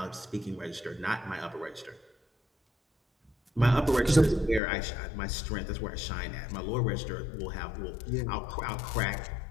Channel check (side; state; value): right; drops out; at 4.6 s